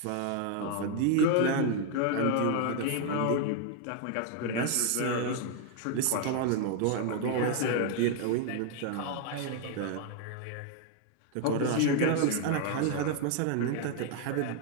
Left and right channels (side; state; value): both; different; correlation 0.00